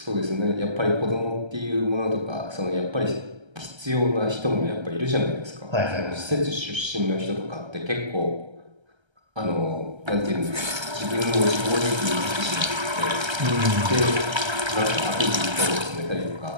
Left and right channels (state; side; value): late; left; 1.3 ms